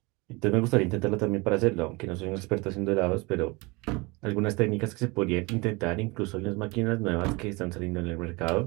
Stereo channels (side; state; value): left; quieter; 25.8 dB